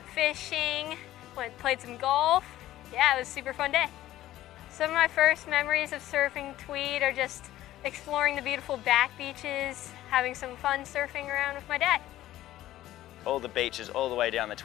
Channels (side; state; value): right; quieter; 14.4 dB